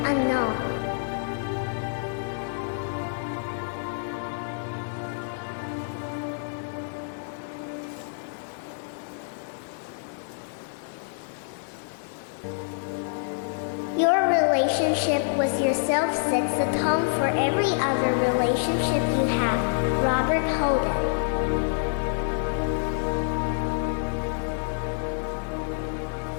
Unknown. Your relationship with yourself sets the tone for every other relationship you have. Robert Holden.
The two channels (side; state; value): right; silent; digital silence